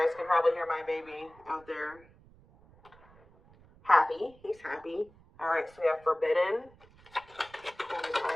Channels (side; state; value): right; noise; rumble, 26 dB below the sound